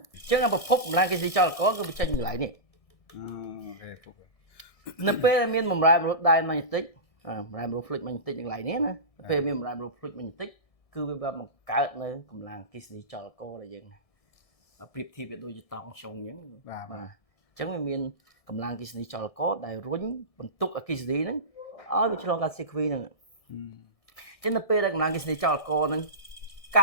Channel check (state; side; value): late; right; 1.6 ms